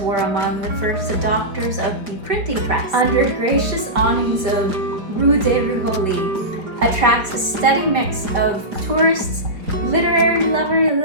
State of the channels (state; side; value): late; left; 4.8 ms